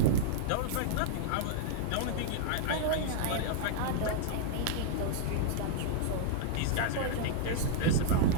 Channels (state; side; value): different; both; correlation -0.01